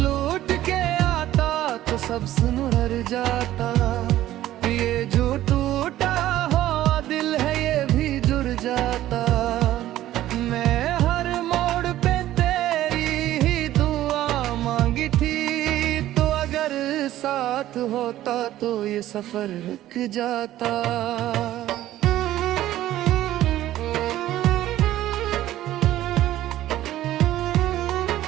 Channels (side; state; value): left; quieter; 14.0 dB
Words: के आता तो सब सुनहर जाता। ये जो टूटा हुआ दिल है ये भी जुड़ जाता। मैं हर मोड़ पे तेरी ही दुआ मांगी थी, तो अगर साथ होता तो ये सफर रुक जाता।